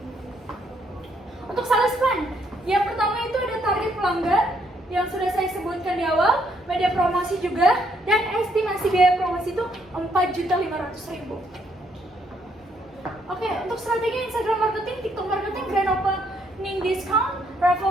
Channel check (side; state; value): both; normal; correlation 0.71